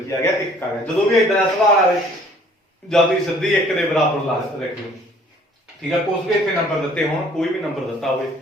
ਕੀ ਆ ਗਿਆ, 1 ਆ ਗਿਆ। ਜਦੋਂ ਵੀ ਇਦਾਂ ਦਾ ਸਵਾਲ ਆਵੇ ਜਦ ਤੁਸੀਂ ਸਿੱਧੀ 1 ਦੇ ਬਰਾਬਰ ਲਾ ਰੱਖਿਓ, ਠੀਕ ਹੈ। ਕੁਝ ਵੀ ਇੱਥੇ ਨੰਬਰ ਦਿੱਤੇ ਹੋਣ, ਕੋਈ ਵੀ ਨੰਬਰ ਦਿੱਤਾ ਹੋਵੇ,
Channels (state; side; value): normal; both; correlation 0.56